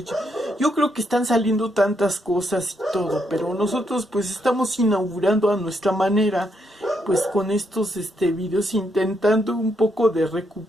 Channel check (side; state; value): both; normal; correlation 0.77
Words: yo creo que están saliendo tantas cosas y todo, pero nosotros pues estamos inaugurando a nuestra manera, pues con estos videos intentando un poco de